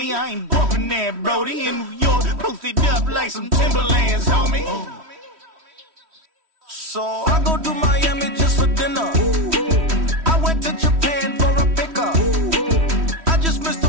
I ain't bumping that, Brody. In New York, posted up like some Timberlands, homie. So I go to Miami just for dinner. I went to Japan for a pickup. I just missed a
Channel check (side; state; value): left; late; 3.1 ms